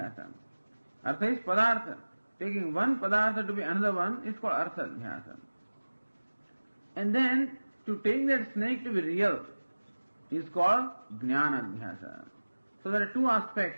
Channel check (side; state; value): both; inverted; correlation -1.00